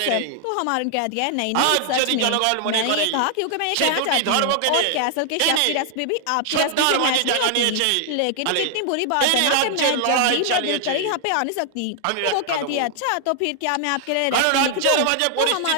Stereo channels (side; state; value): both; different; correlation 0.00